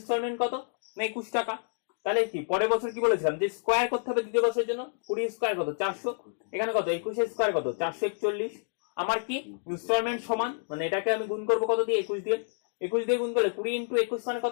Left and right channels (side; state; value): right; silent; digital silence